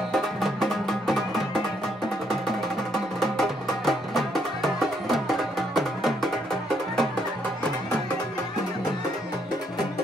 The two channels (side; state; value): both; normal; correlation 0.73